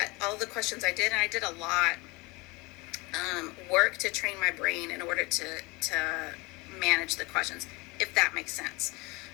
the questions I did, and I did a lot, work to train my brain in order to manage the questions, if that makes sense.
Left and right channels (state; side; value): quieter; right; 25.3 dB